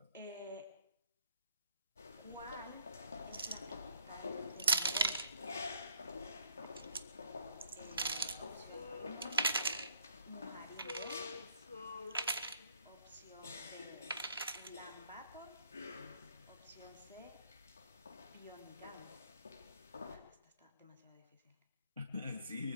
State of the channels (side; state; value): both; inverted; correlation -0.65